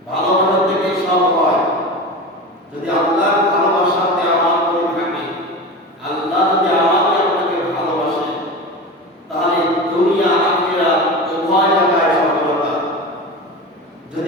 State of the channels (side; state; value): both; normal; correlation 0.28